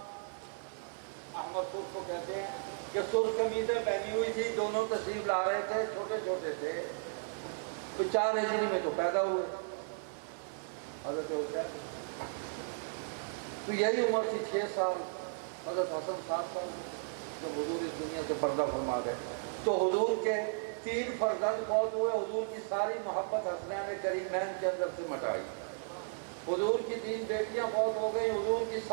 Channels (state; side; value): silent; left; 54 dB below the other